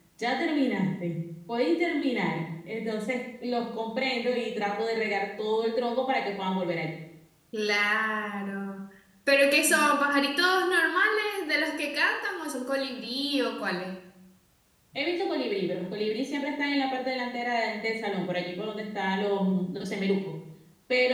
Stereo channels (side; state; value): both; identical; correlation 1.00